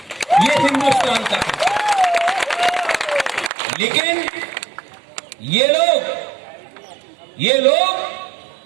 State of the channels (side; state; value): left; drops out; at 3.5 s